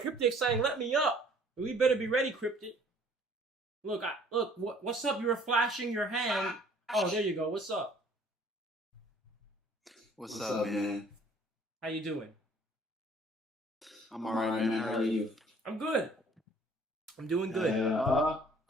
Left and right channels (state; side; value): normal; both; correlation 0.56